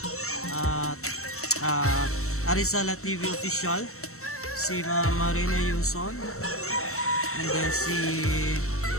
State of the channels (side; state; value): right; late; 0.63 ms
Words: Arizala TV Official, si Marina Yuson, and then